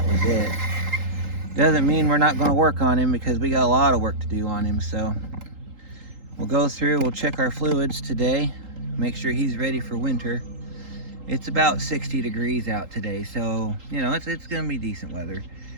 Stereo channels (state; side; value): late; left; 3.8 ms